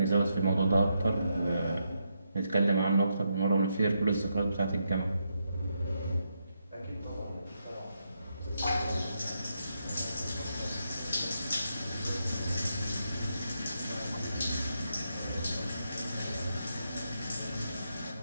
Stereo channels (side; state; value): both; inverted; correlation -0.82